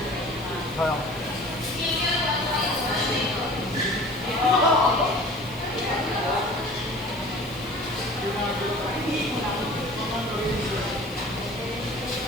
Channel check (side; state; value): left; noise; hiss, 22 dB below the sound